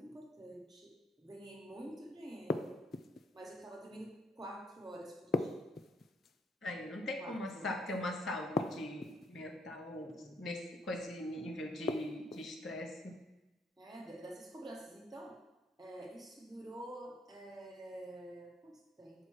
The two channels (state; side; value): normal; both; correlation 0.70